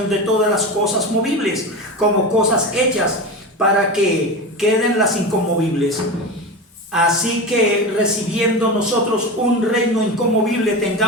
de todas las cosas movibles, como cosas hechas, para que queden las inconmovibles. Así que recibiendo nosotros un reino inconmovible,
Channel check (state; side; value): normal; both; correlation 0.24